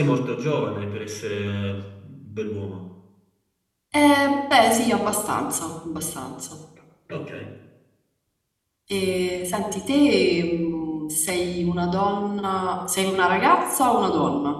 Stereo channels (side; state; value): both; identical; correlation 1.00